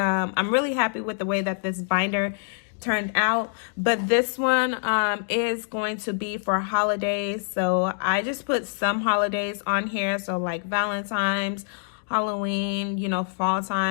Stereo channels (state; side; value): silent; right; digital silence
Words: really happy with the way that this binder turned out, but this one is going to be for holidays. So I just put some holidays on here, so like Valentine's, Halloween, fall